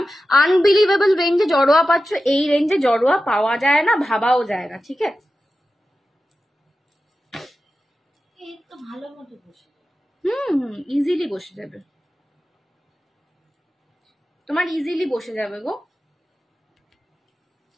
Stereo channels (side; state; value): both; normal; correlation 0.93